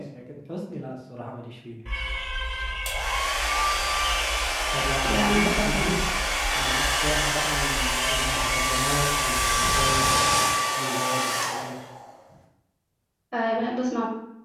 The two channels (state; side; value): identical; both; correlation 1.00